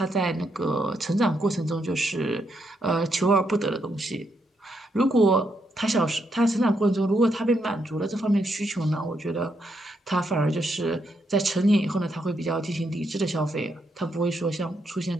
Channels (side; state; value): both; normal; correlation 0.79